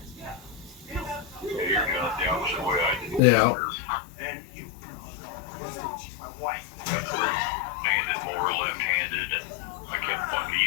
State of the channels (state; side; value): drops out; right; at 3.2 s